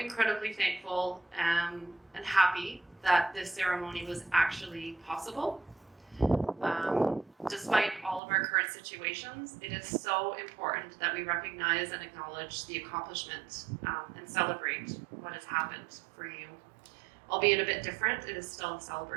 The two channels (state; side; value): drops out; left; at 8.2 s